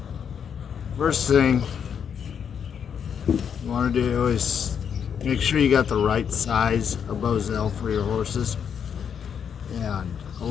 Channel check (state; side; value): quieter; right; 7.6 dB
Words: first thing you want to do is make sure you got the right size of bosel for your horses. And a